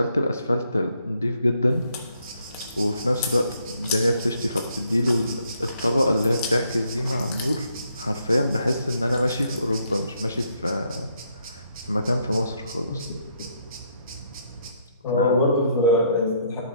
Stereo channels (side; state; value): both; inverted; correlation -0.72